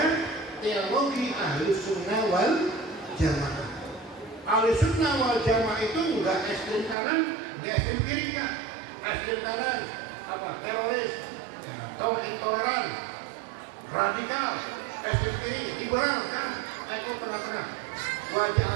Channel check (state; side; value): drops out; left; at 7.0 s